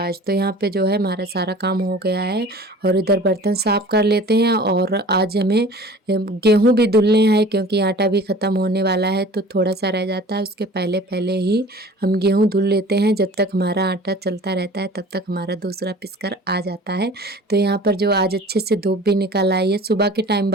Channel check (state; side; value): normal; both; correlation 0.44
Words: आज। तो यहाँ पे जो है हमारा सारा काम हो गया है और इधर बर्तन साफ़ कर लेते हैं। और आज हमें गेहूँ भी धुलने हैं क्योंकि आटा भी ख़त्म होने वाला है, तो थोड़ा सा रह जाता है, उसके पहले पहले ही हम गेहूँ धुल लेते हैं। जब तक हमारा आटा चलता रहता है तब तक हमारा दूसरा पिसकर आ जाता है। तो यहाँ पर जो आज अच्छे से धूप भी निकल आई है, सुबह के टाइम